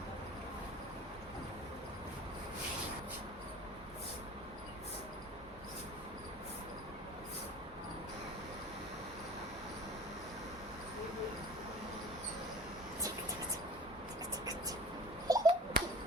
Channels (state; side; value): normal; both; correlation 0.42